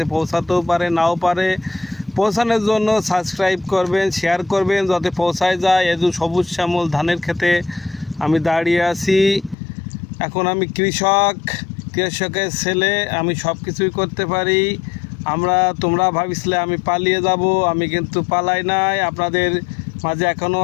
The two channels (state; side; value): drops out; right; at 9.6 s